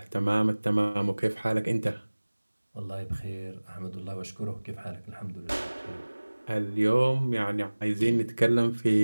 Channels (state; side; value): inverted; both; correlation -1.00